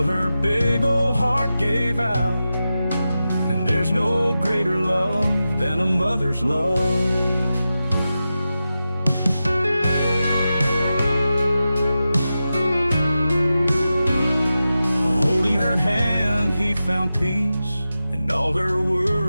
her big old heart gave out. And there's no greater love than a mother's love. Holding her hand, he found peace, and all her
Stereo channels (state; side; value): inverted; both; correlation -0.92